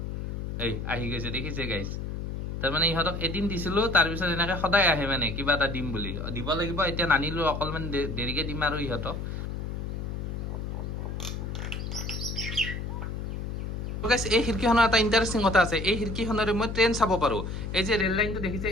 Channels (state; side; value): noise; left; hum, 5 dB below the sound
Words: এই আহি গৈছে দেখিছে গাইছ তাৰমানে ইহঁতক এদিন দিছিলো তাৰপিছত এনেকৈ সদায় আহে মানে কিবা এটা দিম বুলি দিব লাগিব এতিয়া নানিলো অকণমান দেৰিকৈ দিম আৰু ইহঁতক এই খিৰিকীখনৰ এটা ইণ্টাৰেষ্টিং কথা আছে এই খিৰিকীখনেৰে মই ট্ৰেইন চাব পাৰোঁ এই যে ৰেল লাইনটো দেখিছে